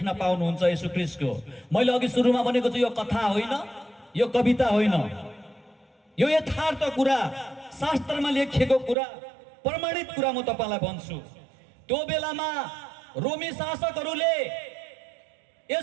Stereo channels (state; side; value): drops out; left; at 9.0 s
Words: पाउनुहुन्छ येशू ख्रीष्टको। मैले अघि सुरुमा भनेको छु, यो कथा होइन, यो कविता होइन, यो यथार्थ कुरा, शास्त्रमा लेखिएको कुरा, प्रमाणित कुरा म तपाईलाई भन्छु। त्यो बेलामा रोमी शासकहरूले